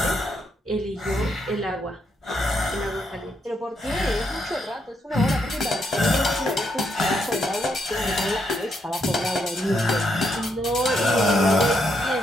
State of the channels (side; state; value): both; normal; correlation 0.77